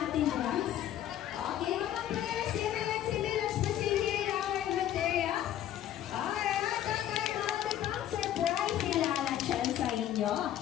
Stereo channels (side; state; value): right; quieter; 11.6 dB